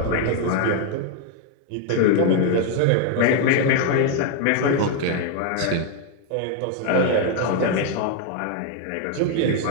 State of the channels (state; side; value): different; both; correlation 0.01